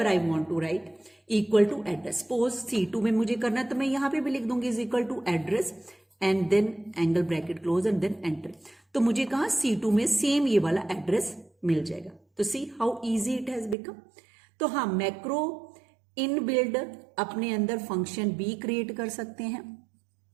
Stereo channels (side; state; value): left; drops out; at 13.8 s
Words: I want to write equal to address. Suppose C2 में मुझे करना है तो मैं यहां पे भी लिख दूंगी is equal to address and then angle bracket close and then enter. तो मुझे कहा C2 में सेम ये वाला एड्रेस मिल जाएगा. तो see how easy it has become. तो हाँ, मैक्रो इन बिल्ड अपने अंदर फंक्शन भी क्रिएट कर सकते हैं.